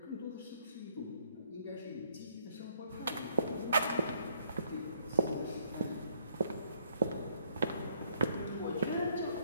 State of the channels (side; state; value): both; inverted; correlation -0.68